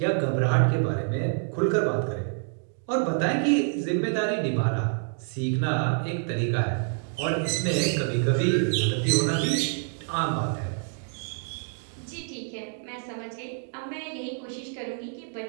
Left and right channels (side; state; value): left; silent; 55 dB below the other